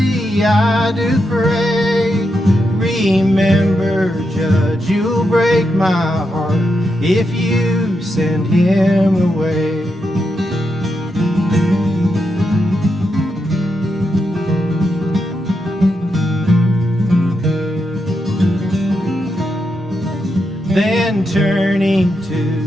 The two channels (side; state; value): both; normal; correlation 0.84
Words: I do pray. Remember, Judge, you'll break my heart if you send him away." Then turning